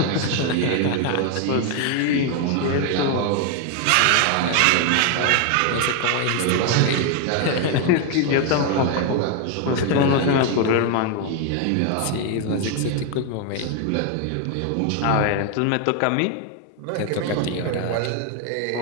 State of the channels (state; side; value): different; both; correlation 0.01